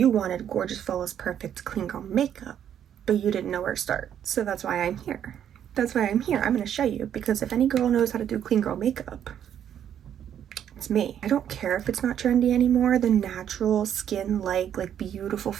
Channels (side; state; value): left; quieter; 9.6 dB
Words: wanted gorgeous, flawless, perfect, clean girl makeup, but you didn't know where to start. So that's why I'm here. I'm gonna show you, because if any girl knows how to do clean girl makeup, it's me. I don't care if it's not trendy anymore. The natural skin like beautiful